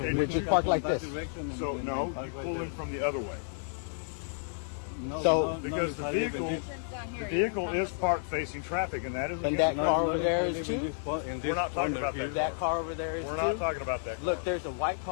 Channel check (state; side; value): silent; right; digital silence